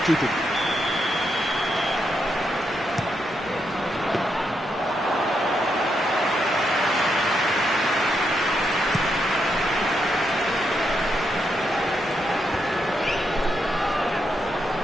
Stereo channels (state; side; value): normal; both; correlation 0.81